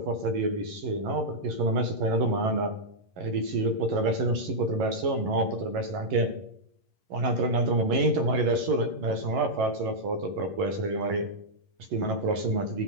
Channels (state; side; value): late; left; 11 ms